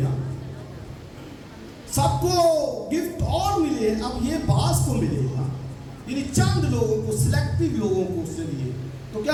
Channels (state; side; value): identical; both; correlation 1.00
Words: گا، سب کو گفٹ اور ملے، اب یہ بعض کو ملے گا، یعنی چند لوگوں کو، سلیکٹیو لوگوں کو اس نے دیے. تو